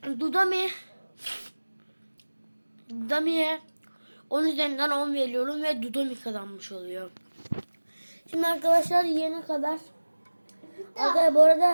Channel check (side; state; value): both; inverted; correlation -1.00